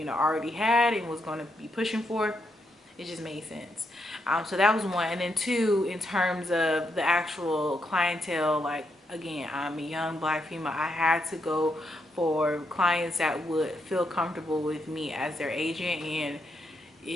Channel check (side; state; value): both; normal; correlation 0.80